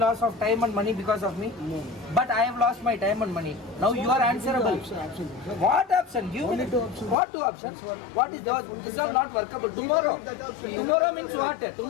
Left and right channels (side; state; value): right; drops out; at 7.2 s